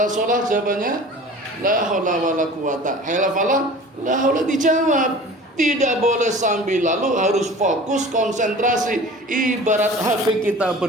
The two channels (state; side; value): normal; both; correlation 0.41